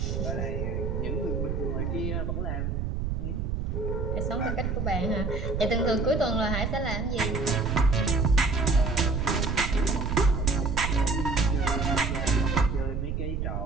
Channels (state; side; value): noise; right; rumble, 1 dB below the sound